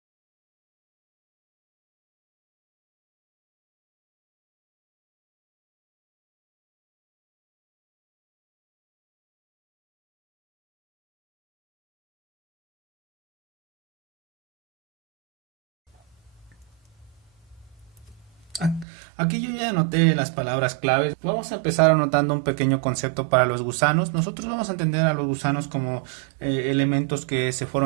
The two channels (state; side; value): drops out; left; at 18.9 s